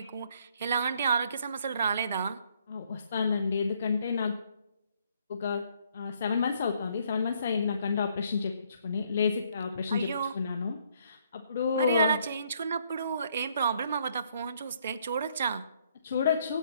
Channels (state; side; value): inverted; both; correlation -0.67